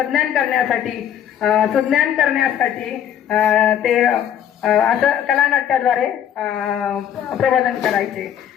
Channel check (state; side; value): quieter; right; 9.7 dB